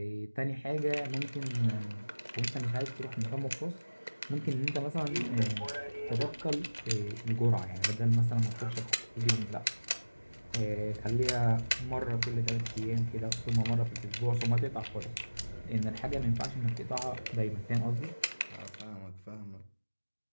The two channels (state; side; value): inverted; both; correlation -1.00